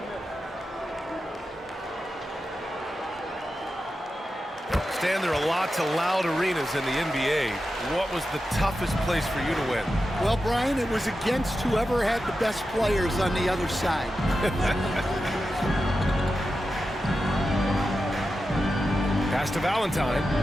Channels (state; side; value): normal; both; correlation 0.91